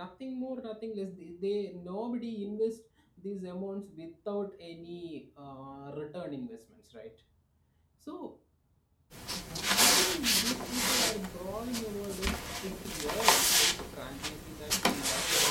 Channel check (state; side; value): identical; both; correlation 1.00